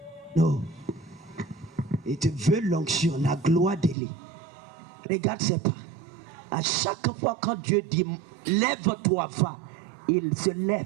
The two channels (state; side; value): drops out; left; at 4.0 s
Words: no. Et tu veux l'onction, la gloire d'Élie. Regarde ces pas. À chaque fois quand Dieu dit lève-toi, va, il se